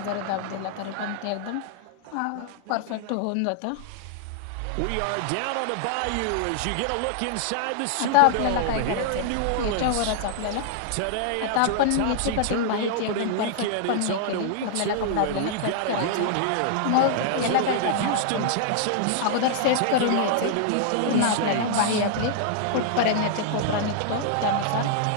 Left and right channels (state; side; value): different; both; correlation -0.01